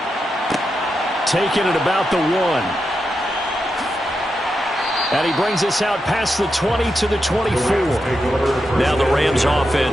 Taking it about the 1. And he brings us out past the 20 to the 24. Now the Rams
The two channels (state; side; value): normal; both; correlation 0.87